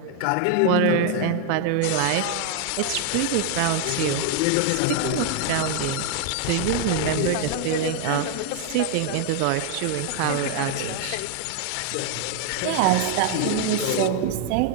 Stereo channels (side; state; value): both; different; correlation 0.00